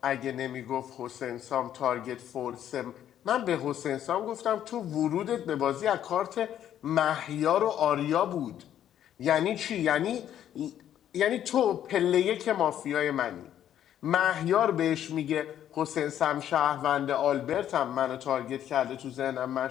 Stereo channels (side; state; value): right; quieter; 10.7 dB